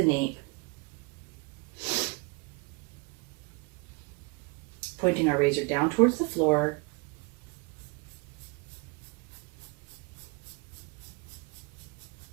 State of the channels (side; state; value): left; quieter; 29.9 dB